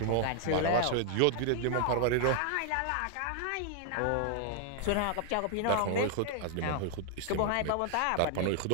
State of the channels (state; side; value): different; both; correlation 0.00